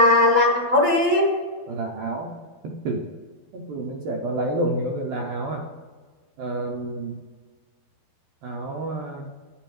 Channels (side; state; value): left; late; 12 ms